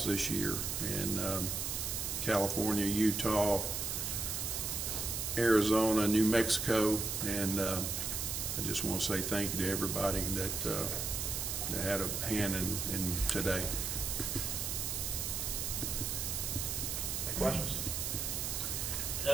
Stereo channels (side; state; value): right; noise; hiss, 1 dB below the sound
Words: this year in California, Utah, Arizona, New Mexico, and I just want to say thank you to everybody that had a hand in today. Questions?